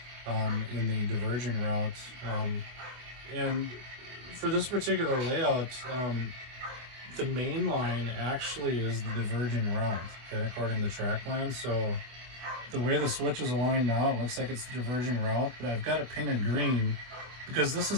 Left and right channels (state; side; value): late; left; 24 ms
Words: in the diverging route. And for this particular layout, the main line actually is the diverging route, okay, according to track plan. So the way the switch is aligned now, it looks like it's the diverging route, but I've got it painted green because this